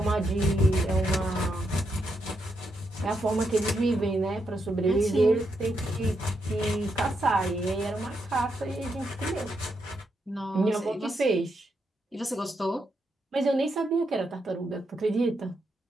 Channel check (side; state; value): both; normal; correlation 0.81